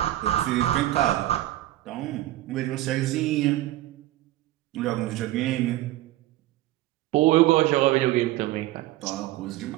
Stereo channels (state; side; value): quieter; left; 15.7 dB